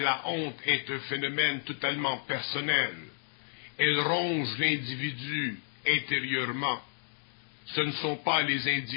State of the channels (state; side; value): silent; right; digital silence